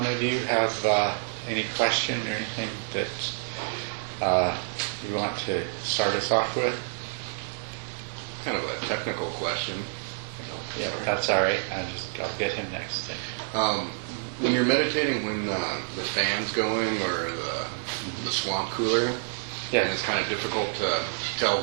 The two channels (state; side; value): silent; left; digital silence